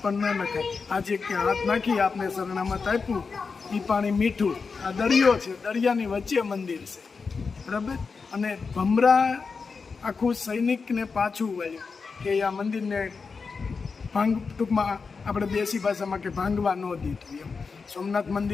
પણ ન નખાય. આજે કે હાથ નાખી આપણે શરણામાં તાપ્યું, એ પાણી મીઠું. આ દરિયો છે, દરિયાની વચ્ચે મંદિર છે, બરાબર. અને ભમરા આખું સૈનિકને પાછું વળ્યું કે આ મંદિરને ટૂંકમાં આપણે દેશી ભાષામાં કે ભાંગવા ન દીધું એમ. સોમનાથ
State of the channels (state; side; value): quieter; right; 4.9 dB